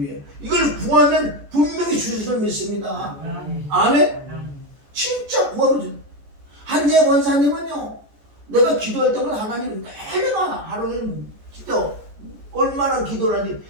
이걸 구하면 분명히 주실 줄 믿습니다. 아멘. 진짜 구하면 주. 한재 권사님은요 내가 기도할 때마다 하나님 내가 하루에 진짜 얼마나 기도를 하니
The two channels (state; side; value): late; left; 14 ms